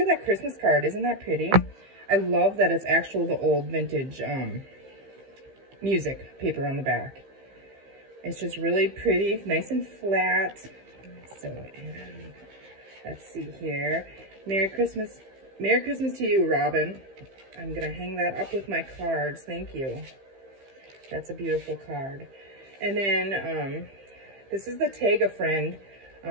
that Christmas card. Isn't that pretty? I love that it's actual the old vintage music paper on the back. It's just really pretty, nice and flat. So, and let's see here. Merry Christmas to you, Robin. I'm gonna hang that up with my cards. Thank you. That's a beautiful card. And then this is the Tag a Friend,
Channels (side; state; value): left; late; 15 ms